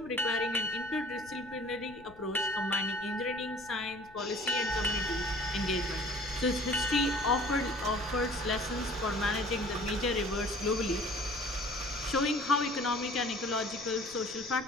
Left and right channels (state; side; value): noise; left; rumble, 23 dB below the sound